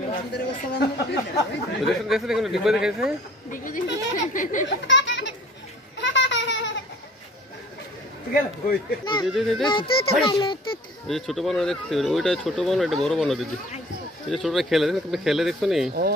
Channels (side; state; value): both; normal; correlation 0.50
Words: দেখছো দেখো ডিব্বা দেখাইছে ছোট বানর দেখতে ওইটা ছোট বানর এটা বড় বানর দিদি এই যে ছোটরা খেলে দেখো খেলে দেখছো নি